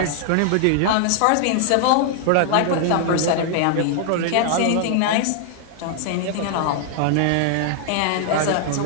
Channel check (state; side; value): different; both; correlation 0.00